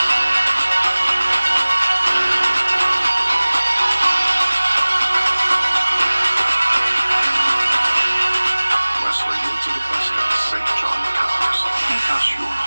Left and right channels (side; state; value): both; inverted; correlation -1.00